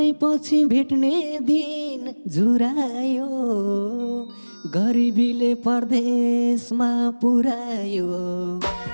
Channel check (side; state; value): both; inverted; correlation -1.00